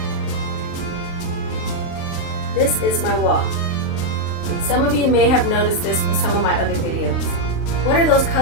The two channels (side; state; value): right; late; 39 ms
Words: This is my wall. Some of you may have noticed this from some of my other videos. What are those